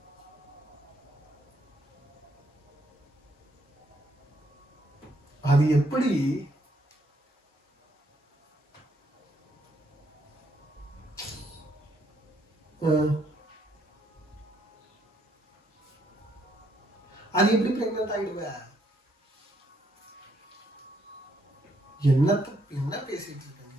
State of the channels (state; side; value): normal; both; correlation 0.72